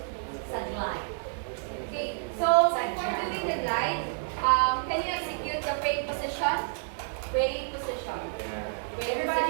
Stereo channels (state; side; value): silent; left; digital silence